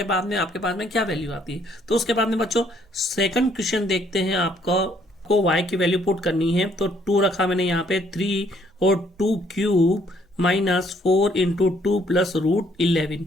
बाद में आपके पास में क्या वैल्यू आती है। तो उसके बाद में बच्चों सेकंड क्वेश्चन देखते हैं, आपको y की वैल्यू पुट करनी है। तो 2 रखा मैंने यहाँ पे 3 और 2 cube minus 4 into 2 plus root 11।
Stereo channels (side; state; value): both; normal; correlation 0.66